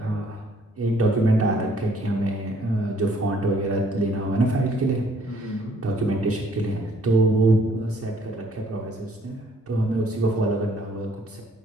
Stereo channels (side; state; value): both; normal; correlation 0.63